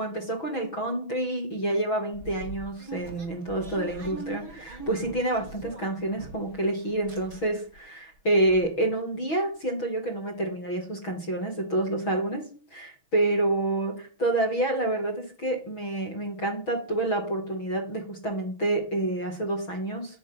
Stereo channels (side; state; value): right; late; 6.2 ms